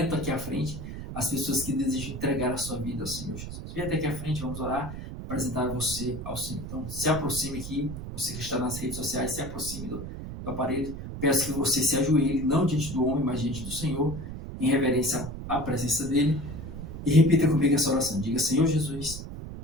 aqui à frente, as pessoas que desejam entregar a sua vida ao Senhor Jesus. Vem até aqui à frente, vamos orar, apresentar você ao Senhor. Então, se aproxime aqui, você que está nas redes sociais, se aproxime do aparelho. Peço que você se ajoelhe, não diante do homem, mas diante do Senhor, em reverência à presença dele. E repita comigo essa oração. Diga: Senhor Jesus,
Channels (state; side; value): noise; right; rumble, 8 dB below the sound